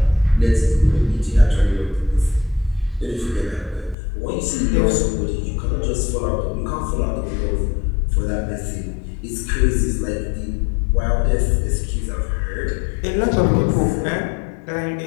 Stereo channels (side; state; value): right; drops out; at 4.0 s